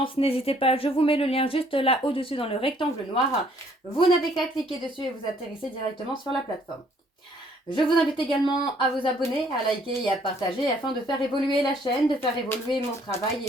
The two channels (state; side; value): normal; both; correlation 0.63